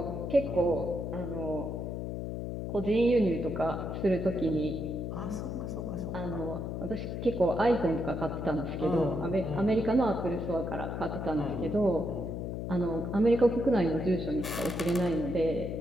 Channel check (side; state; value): left; noise; hum, 4 dB below the sound